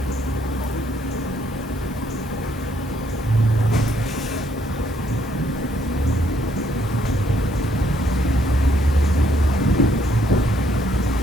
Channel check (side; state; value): both; normal; correlation 0.70